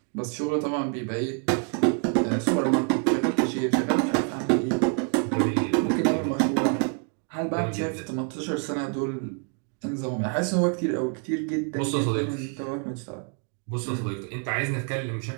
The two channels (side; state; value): left; quieter; 39.8 dB